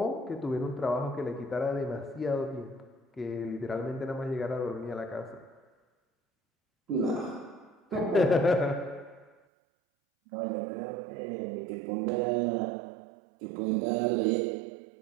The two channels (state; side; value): drops out; left; at 9.3 s